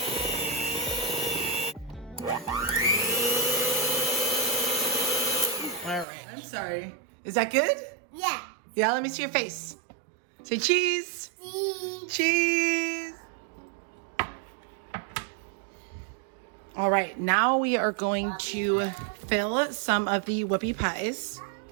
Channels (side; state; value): left; drops out; at 6.1 s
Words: All right. I'm sorry. Is that good? Yeah. Yeah, let me see your face. Say cheese. Cheese. Cheese. All right, now we are going to fill some of the whoopie pies.